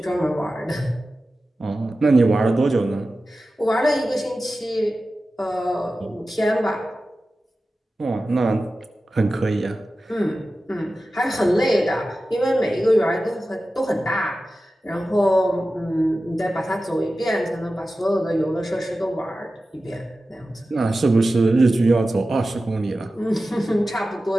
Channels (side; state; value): both; normal; correlation 0.94